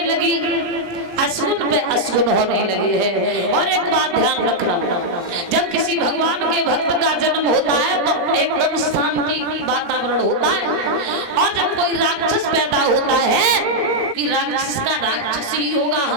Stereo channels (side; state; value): left; late; 17 ms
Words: लगी, अशुन पे अशुन होने लगे हैं। और एक बात ध्यान रखना, जब किसी भगवान के भक्त का जन्म होता है तो एकदम शांति वातावरण होता है। और जब कोई राक्षस पैदा होता है कि राक्षस का राक्षस ही होगा,